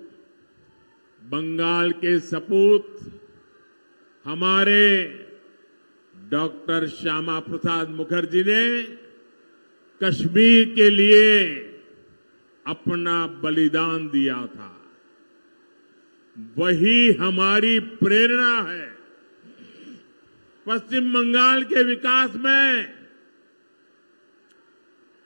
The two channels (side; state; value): both; inverted; correlation -1.00